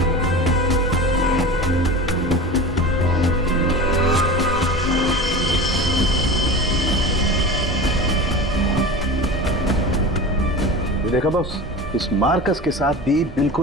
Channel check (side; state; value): both; normal; correlation 0.31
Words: देखा बॉस, इस मार्कस के साथ भी